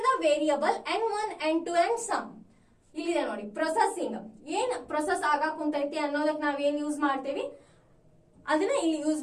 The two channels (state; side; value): identical; both; correlation 1.00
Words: the variable n1 n2 and sum. ಇಲ್ಲಿದೆ ನೋಡಿ, ಪ್ರೊಸೆಸಿಂಗ್. ಏನ್ ಪ್ರೊಸೆಸ್ ಆಗಾಕ್ ಕುಂತೈತಿ ಅನ್ನೋದಕ್ಕೆ ನಾವೇನ್ ಯೂಸ್ ಮಾಡ್ತೇವಿ ಅದನ್ನ ಇಲ್ಲಿ ಯೂಸ್